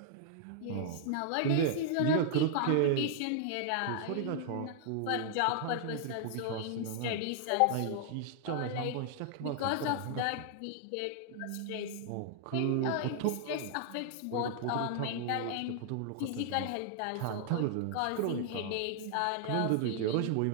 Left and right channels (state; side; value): different; both; correlation -0.01